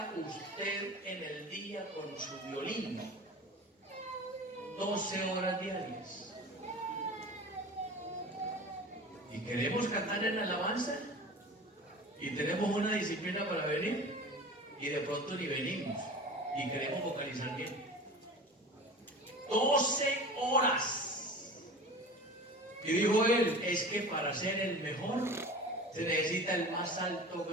usted en el día con su violín? 12 horas diarias. ¿Y queremos cantar en alabanza? Y tenemos una disciplina para venir, y de pronto ni venimos, y queremos vocalizar bien. 12 horas. Y dijo él, es que para ser el mejor se necesita el más alto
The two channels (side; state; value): both; normal; correlation 0.37